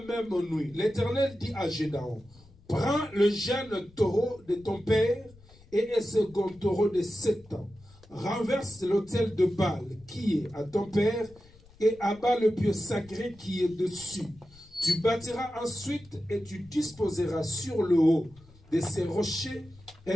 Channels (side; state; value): left; noise; rumble, 25 dB below the sound